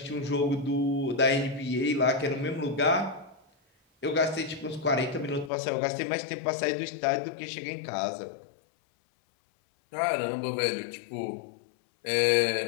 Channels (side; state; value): right; drops out; at 5.5 s